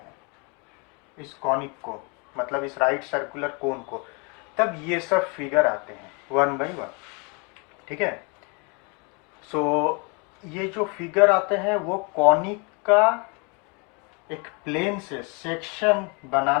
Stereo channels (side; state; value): right; quieter; 32.4 dB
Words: इस कॉनिक को, मतलब इस राइट सर्कुलर कोन को, तब ये सब फिगर आते हैं वन बाई वन। ठीक है। ये जो फिगर आते हैं वो कॉनिक का एक प्लेन से सेक्शन